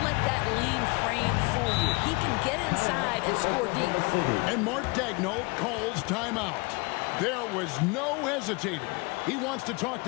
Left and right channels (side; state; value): right; quieter; 27.7 dB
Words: let that lean frame fool you. He can get inside and score deep. And Mark Daigneault calls timeout. There was no hesitating. He wants to talk